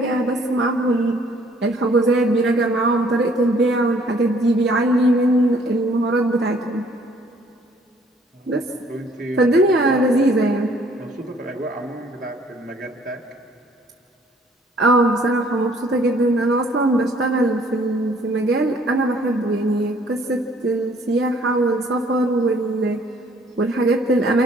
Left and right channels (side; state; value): both; normal; correlation 0.60